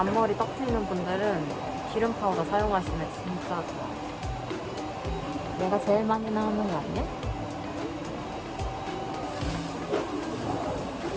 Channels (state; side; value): identical; both; correlation 1.00